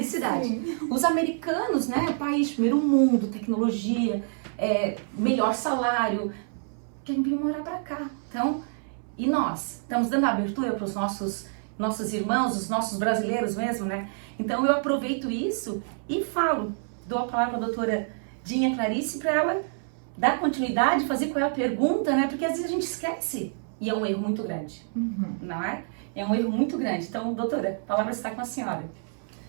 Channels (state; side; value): silent; left; 60 dB below the other